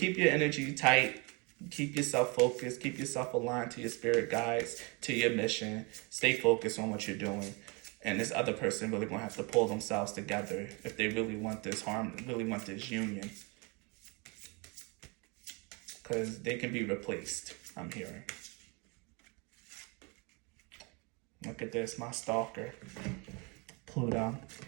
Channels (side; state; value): left; quieter; 30.4 dB